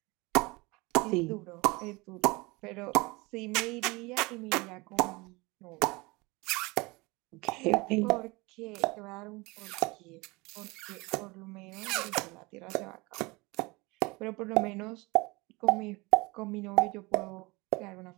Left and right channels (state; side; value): quieter; left; 24.5 dB